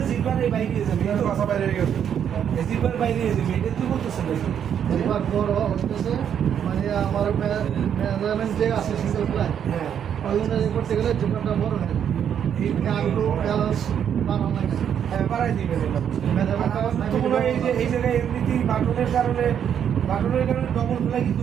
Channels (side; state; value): left; quieter; 8.7 dB